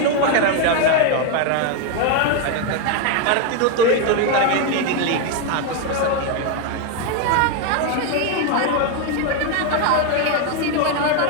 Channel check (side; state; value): both; different; correlation 0.01